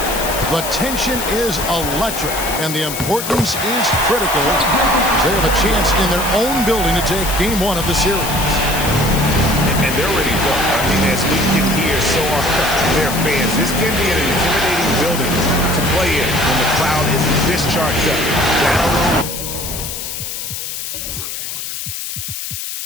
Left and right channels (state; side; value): noise; left; hiss, 6 dB below the sound